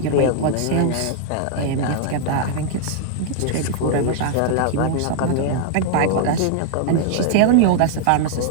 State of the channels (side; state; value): both; different; correlation -0.01